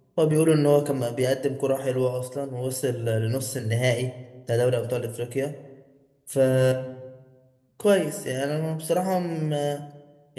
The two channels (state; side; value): identical; both; correlation 1.00